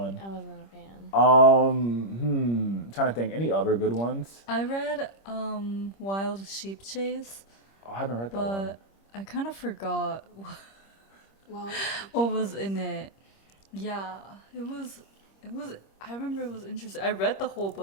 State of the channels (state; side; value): late; right; 25 ms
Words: I wasn't a fan. Trying to think, any other good ones? I read Wild Sheep Chase. Oh, I haven't read that one. But I kind of forgot Well, what was in it. Yeah, it was. I remember it was interesting. I read the whole